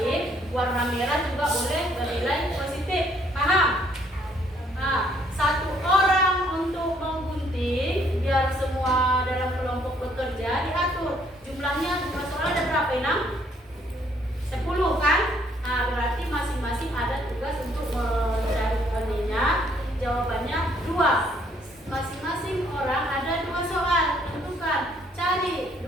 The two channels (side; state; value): both; normal; correlation 0.66